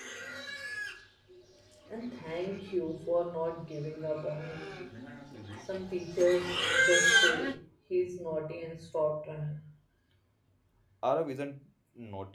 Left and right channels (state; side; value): identical; both; correlation 1.00